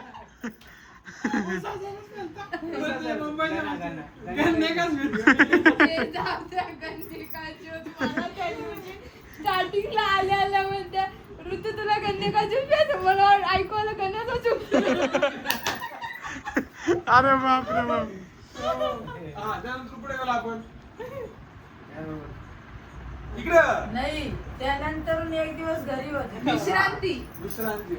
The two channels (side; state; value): both; identical; correlation 1.00